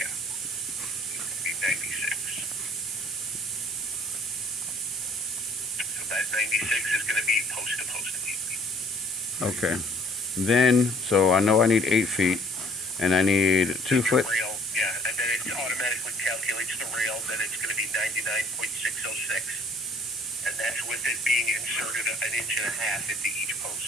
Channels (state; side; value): normal; both; correlation 0.57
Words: It's gonna be 96. So that 96 is gonna be post to post. Okay. Then, so I know I need 8 feet, and I need 2 foot. Rail, yeah, and then it automatically calculates the rail, then it's gonna be 99.606. And that's with it being inserted an inch and a half into each